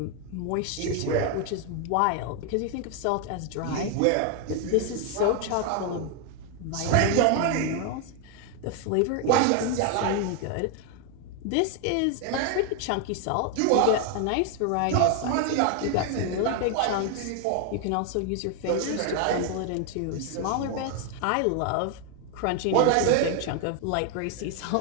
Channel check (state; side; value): different; both; correlation 0.01